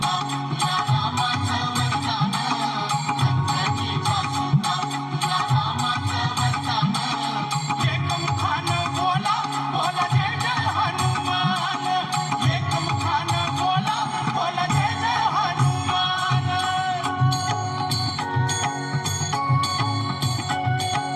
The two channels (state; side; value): identical; both; correlation 1.00